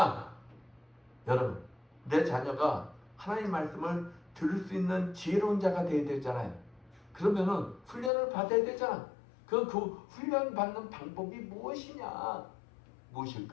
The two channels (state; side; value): drops out; right; at 8.1 s